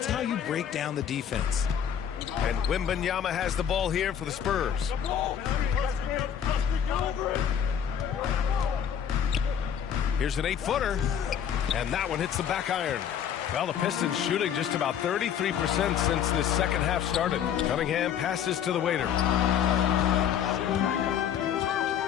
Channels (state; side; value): quieter; right; 8.8 dB